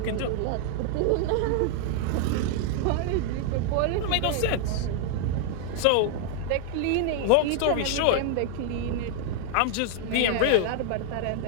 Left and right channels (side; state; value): both; different; correlation 0.00